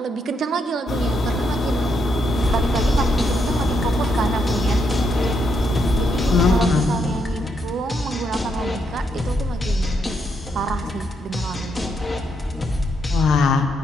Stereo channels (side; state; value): both; normal; correlation 0.78